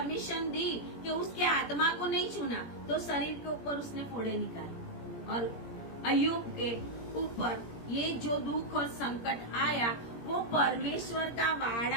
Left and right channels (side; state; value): right; late; 17 ms